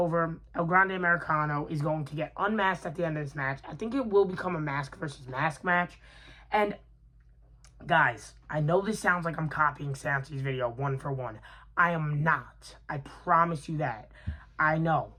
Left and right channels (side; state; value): both; identical; correlation 1.00